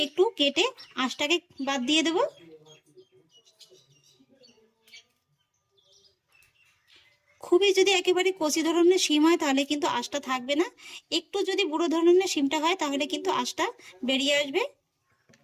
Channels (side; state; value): both; identical; correlation 1.00